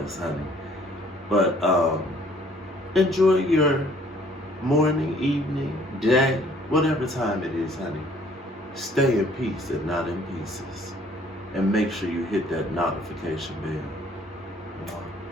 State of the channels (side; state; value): both; normal; correlation 0.59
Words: honey. But enjoy your morning, evening, day, whatever time it is, honey. Stay in peace and not in pieces. And make sure you hit that notification bell.